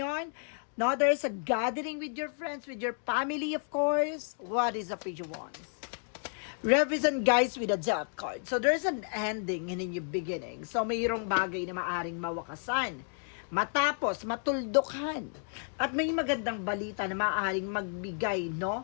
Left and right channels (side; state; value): right; silent; 57 dB below the other